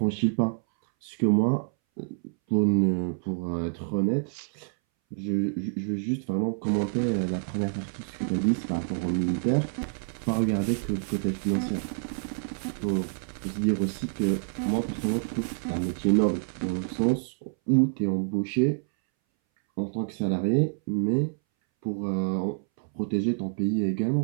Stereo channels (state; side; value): silent; left; 60 dB below the other